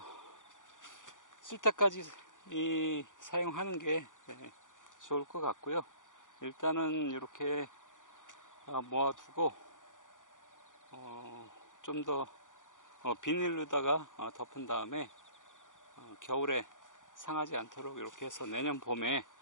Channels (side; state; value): right; late; 0.87 ms